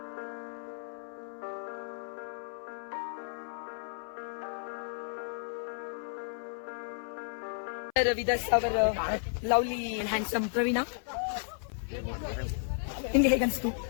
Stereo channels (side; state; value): right; silent; 56 dB below the other